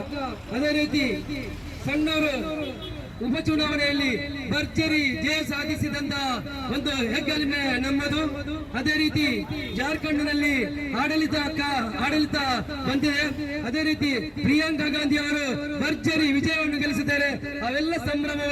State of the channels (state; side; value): identical; both; correlation 1.00